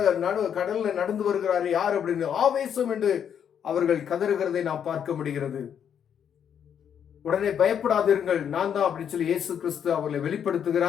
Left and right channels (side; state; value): right; quieter; 8.5 dB